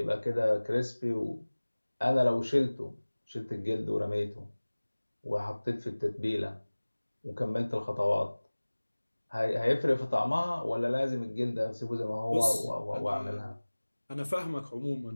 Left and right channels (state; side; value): inverted; both; correlation -1.00